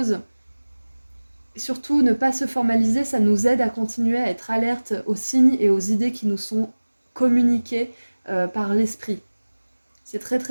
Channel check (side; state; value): both; inverted; correlation -1.00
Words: surtout ne pas se formaliser, ça nous aide à continuer à être alerte aux signes et aux idées qui nous sont communiquées par l'esprit. C'est très